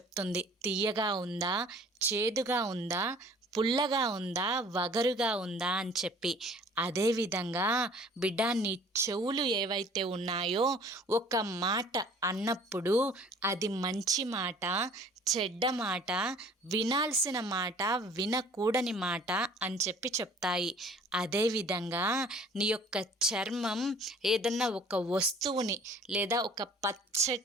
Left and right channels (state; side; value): normal; both; correlation 0.51